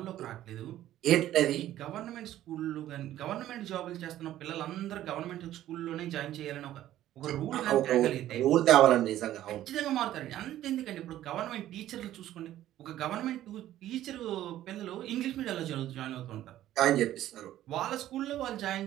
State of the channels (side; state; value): left; quieter; 13.2 dB